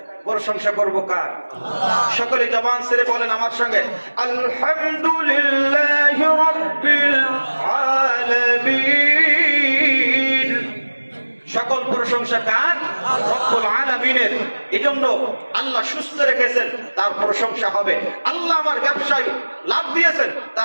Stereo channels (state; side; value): inverted; both; correlation -1.00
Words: প্রশংসা করব কার? সকলে জবান ছেড়ে বলেন আমার সঙ্গে, আলহামদুলিল্লাহি রাব্বিল আলামিন। সকল প্রশংসা কার? রব্বুল আলামিনের। এজন্য আল্লাহ সুস্থ রেখেছেন, তার প্রশংসা হবে। আল্লাহ আমার ব্যবসায় লাভ দিয়েছেন,